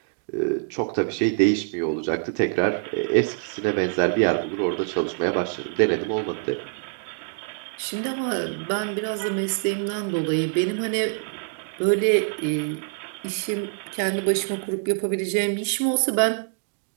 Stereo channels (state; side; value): silent; left; 62 dB below the other